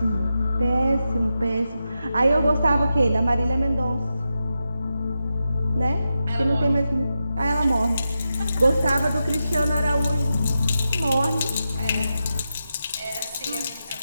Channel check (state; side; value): inverted; both; correlation -0.89